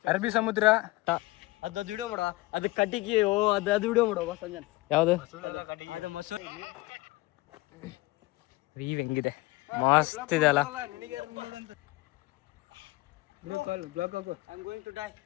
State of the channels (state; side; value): quieter; right; 21.0 dB